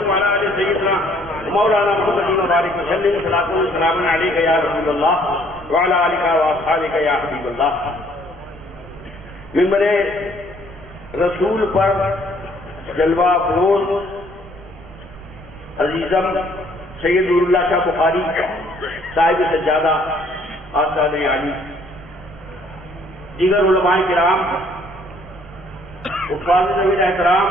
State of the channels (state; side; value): noise; right; rumble, 19 dB below the sound